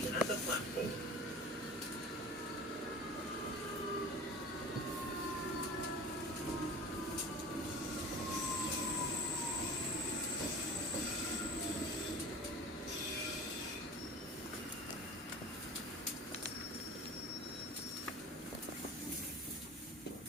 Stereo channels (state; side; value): normal; both; correlation 0.37